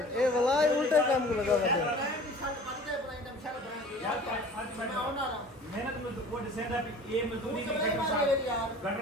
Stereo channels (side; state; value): both; normal; correlation 0.44